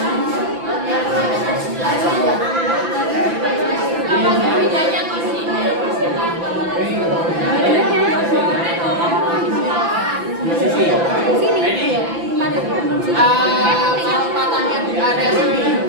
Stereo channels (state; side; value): late; left; 5.9 ms